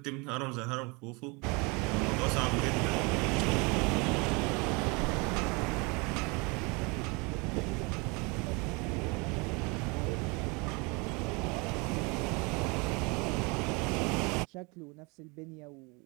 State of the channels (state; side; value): quieter; left; 28.6 dB